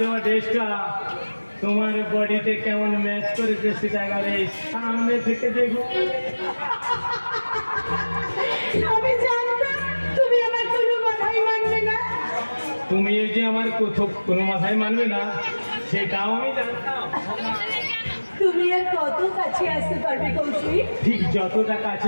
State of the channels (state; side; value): inverted; both; correlation -1.00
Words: ড্রেসটা তোমার বডিতে কেমন ম্যাচ করেছে সেটা এবারে সামনে থেকে দেখো। আমি জানতাম তুমি আমার কোনো কথাই মানবে না। তুমি এই যে আমার কোনো মাথায় মানবে না সেটাও আমি জানতাম। তুমি আর কত কাছে আসতে পারবে কৌশিক? ঠিক যতটা